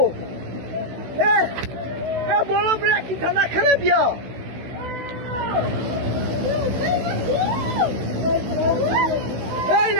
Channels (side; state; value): left; late; 16 ms